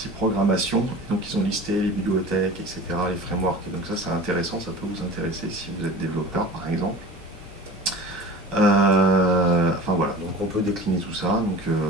programmation. Donc ils ont listé les bibliothèques, etc., les frameworks. Et donc ça c'est intéressant, ça peut vous intéresser si vous êtes développeur par exemple. Enfin voilà, donc on peut décliner tout ça.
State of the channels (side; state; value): both; normal; correlation 0.38